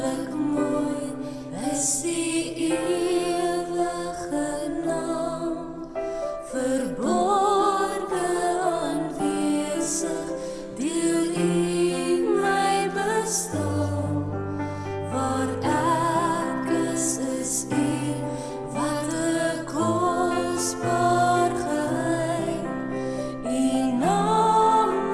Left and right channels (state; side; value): identical; both; correlation 1.00